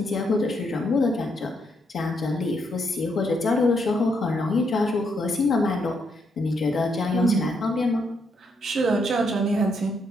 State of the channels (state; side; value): normal; both; correlation 0.77